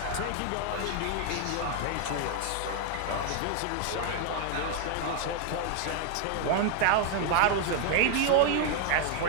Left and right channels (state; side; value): different; both; correlation 0.00